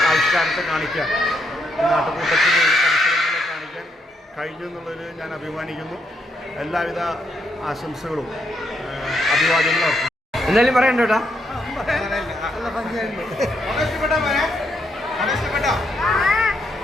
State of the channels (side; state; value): both; normal; correlation 0.77